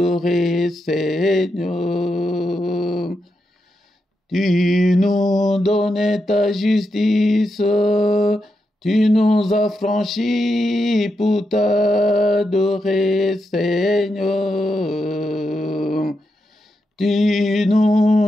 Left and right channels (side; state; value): both; normal; correlation 0.85